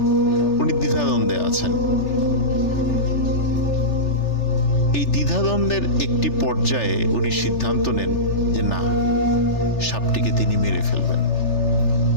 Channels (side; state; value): right; late; 3.3 ms